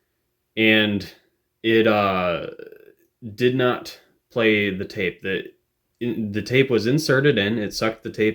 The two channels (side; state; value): both; identical; correlation 1.00